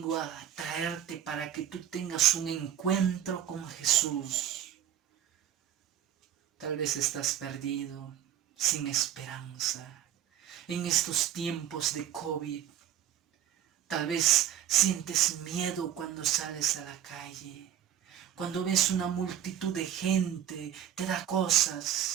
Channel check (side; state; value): left; quieter; 10.7 dB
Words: a traerte para que tú tengas un encuentro con Jesús. Tal vez estás perdido, sin esperanza, en estos tiempos de COVID. Tal vez sientes miedo cuando sales a la calle. Cuando ves una multitud de gente, te da